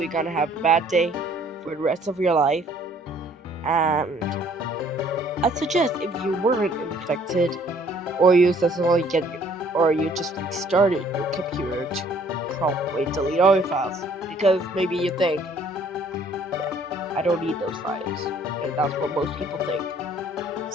gonna have a bad day for the rest of your life. And I suggest if you weren't infected, or you successfully or you just restarted your computer, to probably delete all your files, because maybe you think, yeah, I don't need those files, and that's what most people think.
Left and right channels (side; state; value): both; normal; correlation 0.59